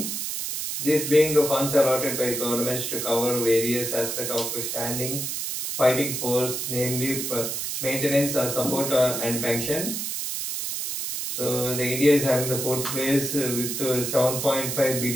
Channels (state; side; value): noise; right; hiss, 3 dB below the sound